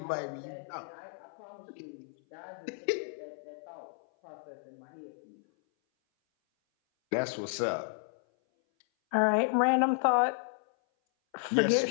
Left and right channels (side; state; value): right; silent; 56 dB below the other